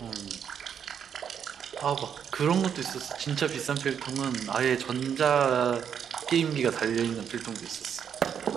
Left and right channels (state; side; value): quieter; left; 8.0 dB